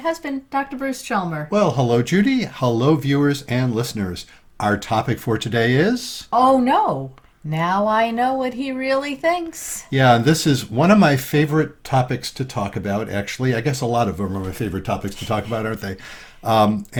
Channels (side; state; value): both; identical; correlation 1.00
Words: Dr. Bruce Chalmer. Well, hello, Judy. Hello, viewers and listeners. Our topic for today is... Oh no, now I know what he really thinks. Yeah, this is one of my favorite topics to talk about, actually. I guess a lot of them are my favorite topics to talk about, aren't they?